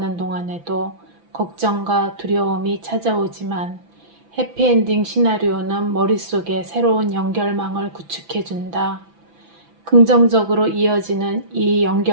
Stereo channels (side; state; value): left; late; 6.0 ms